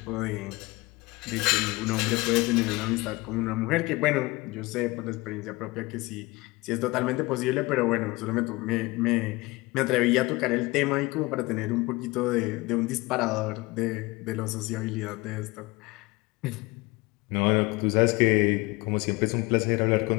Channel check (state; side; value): quieter; right; 22.8 dB